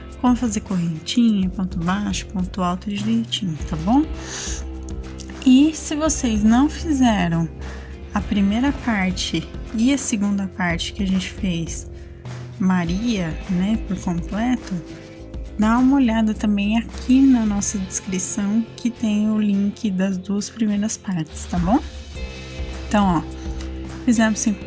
como fazer correntinha, ponto baixo, ponto alto direitinho, tá bom? E se vocês não fizeram a primeira parte e a segunda parte que a gente fez Maria, né, por completo, dá uma olhada também aqui na nossa descrição que tem o link das 2 primeiras partes, tá bom? Então, ó, fizemos 5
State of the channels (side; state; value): both; identical; correlation 1.00